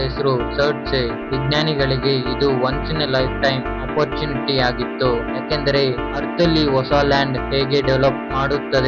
ಹೆಸರು ಸರ್ಡ್ಸೆ. ವಿಜ್ಞಾನಿಗಳಿಗೆ ಇದು once in a life time opportunity ಆಗಿತ್ತು, ಯಾಕೆಂದರೆ ಅರ್ತ್ ಅಲ್ಲಿ ಹೊಸ ಲ್ಯಾಂಡ್ ಹೇಗೆ ಡೆವಲಪ್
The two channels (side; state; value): both; identical; correlation 1.00